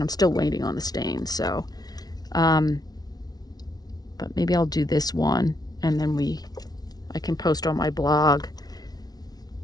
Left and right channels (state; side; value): late; right; 0.19 ms